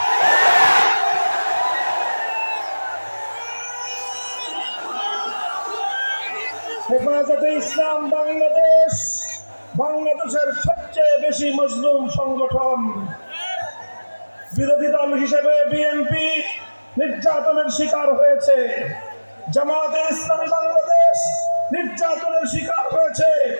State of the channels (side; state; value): both; inverted; correlation -1.00